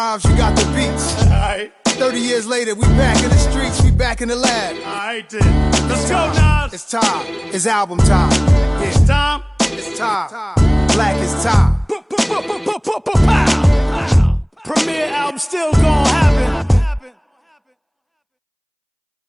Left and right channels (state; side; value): identical; both; correlation 1.00